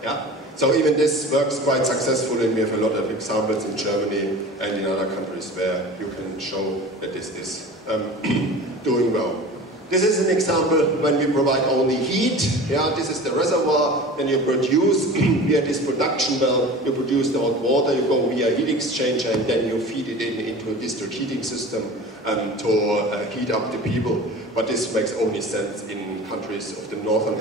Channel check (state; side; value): normal; both; correlation 0.38